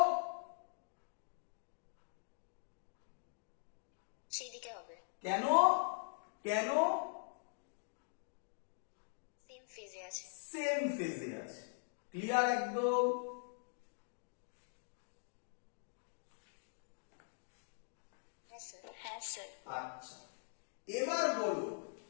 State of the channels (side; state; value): right; silent; digital silence